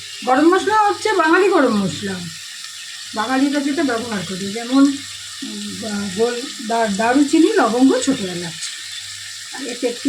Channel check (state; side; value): identical; both; correlation 1.00